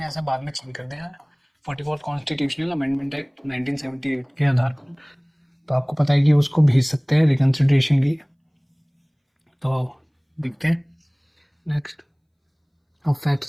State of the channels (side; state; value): both; identical; correlation 1.00